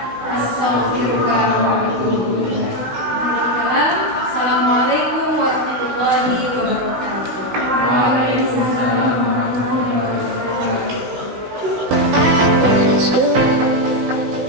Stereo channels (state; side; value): late; left; 16 ms